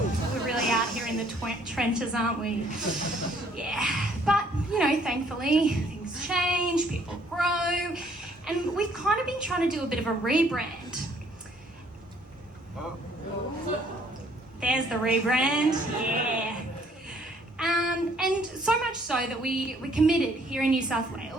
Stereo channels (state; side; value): normal; both; correlation 0.62